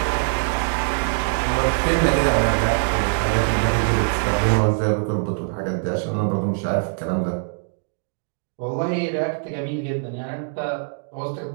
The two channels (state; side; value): silent; left; digital silence